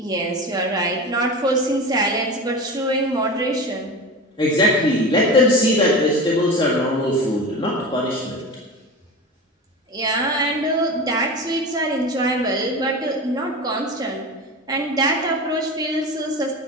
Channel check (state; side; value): normal; both; correlation 0.29